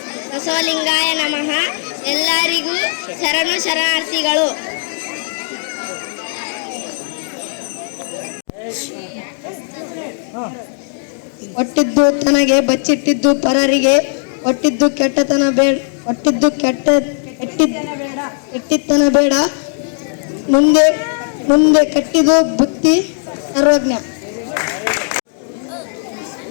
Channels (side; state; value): right; silent; 61 dB below the other